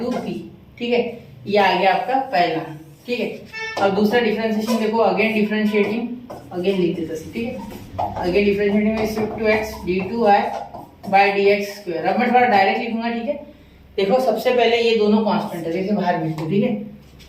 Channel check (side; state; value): both; identical; correlation 1.00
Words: p, ठीक है। ये आ गया आपका पहला, ठीक है। अब दूसरा डिफरेंशिएशन देखो, अगेन डिफरेंशिएटिंग, अगेन लिख देते हैं, ठीक है, again differentiating with respect to x d2y by dx square. अब मैं थोड़ा डायरेक्ट लिखूंगा, ठीक है। देखो सबसे पहले ये दोनों कांस्टेंट है, जैसे बाहर भेज दो, ठीक है,